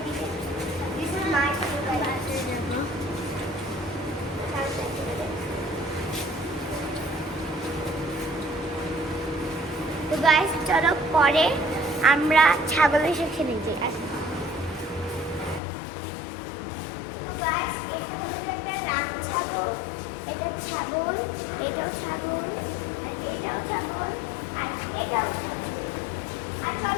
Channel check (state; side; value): drops out; right; at 15.6 s